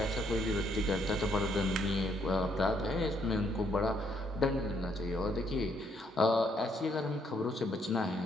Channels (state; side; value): normal; both; correlation 0.71